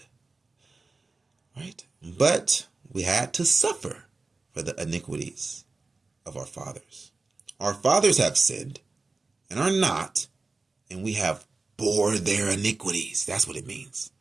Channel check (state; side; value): quieter; left; 3.7 dB